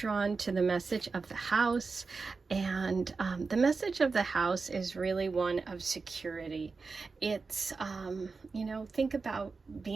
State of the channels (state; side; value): quieter; left; 4.4 dB